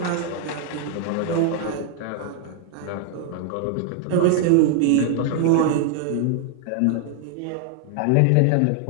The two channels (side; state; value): both; different; correlation 0.00